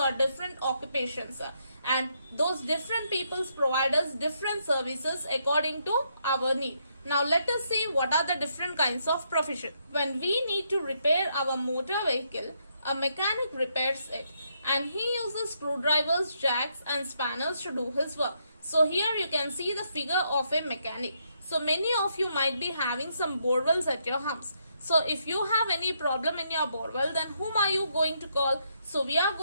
different occupations, and those different peoples provide us different services according to our need. Now let us see what are the different kinds of profession. When we need to repair our motor vehicle, a mechanic repairs it and he uses screwdrivers, jacks and spanners to do his work. So here you can see the figure of a mechanic. So many of you might be having some borewells at your house. So if you have any problem in your borewell, then whom are you going to call? So we are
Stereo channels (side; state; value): both; inverted; correlation -0.76